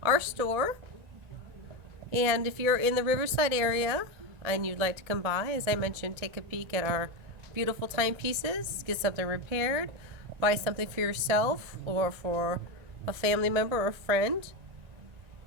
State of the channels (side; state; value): left; late; 1.9 ms